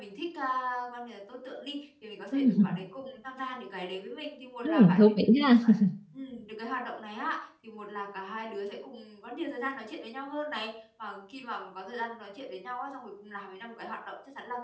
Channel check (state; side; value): identical; both; correlation 1.00